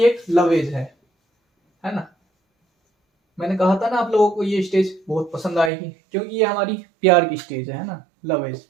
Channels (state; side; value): drops out; left; at 5.7 s